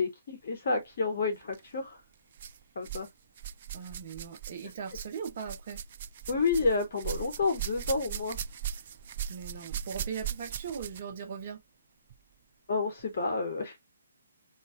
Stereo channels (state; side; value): inverted; both; correlation -0.63